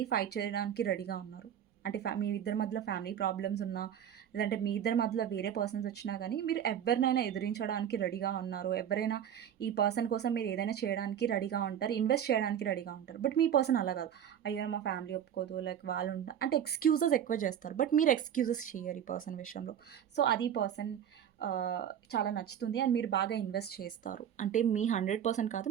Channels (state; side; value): quieter; left; 9.4 dB